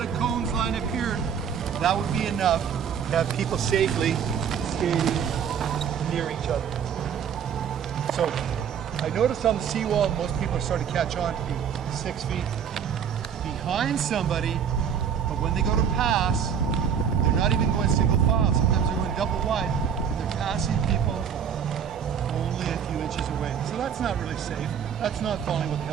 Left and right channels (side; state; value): left; quieter; 7.8 dB